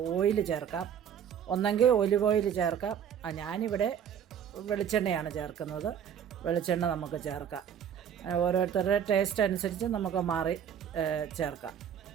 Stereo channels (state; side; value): quieter; left; 8.6 dB